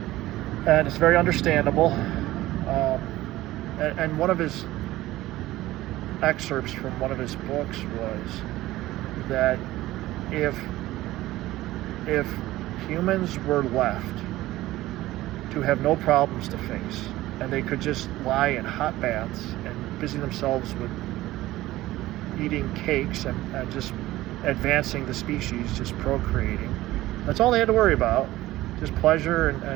and it's very understandable. And one of his excerpts from one of his books was that if humans were left to have no problems to face, and they could just lie in hot baths and busy themselves with eating cakes and just advancing the species, just procreating, that's all they had to worry about, just pleasure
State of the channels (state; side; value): quieter; left; 16.6 dB